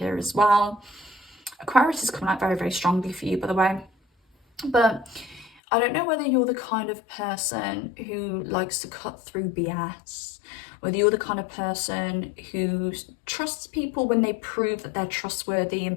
as well. Aquarius is coming out very, very strongly for you, by the way. But I don't know whether you're the kind of person who likes to cut through BS, whether you're the kind of person who trusts people when they prove that they're trustworthy,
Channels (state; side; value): drops out; right; at 5.5 s